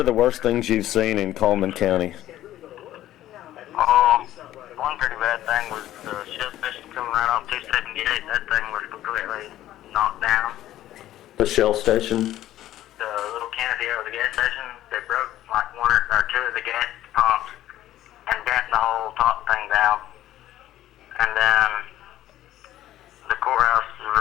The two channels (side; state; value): right; quieter; 13.6 dB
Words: the worst things you've seen in Cullman County? One pretty bad thing was the shell station coming right off 278. That thing was completely knocked down. The Shell station? The little canopy over the gas station, they broke like one or two of the gas pumps and bent the whole top thing down. And then the courthouse